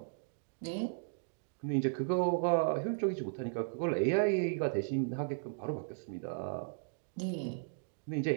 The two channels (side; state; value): left; silent; digital silence